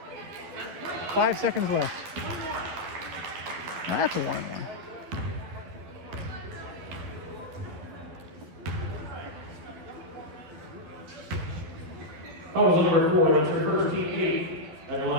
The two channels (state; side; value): late; left; 12 ms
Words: 5 seconds left. That's a 1-1. Fouls number 4, that's your first team 8. At the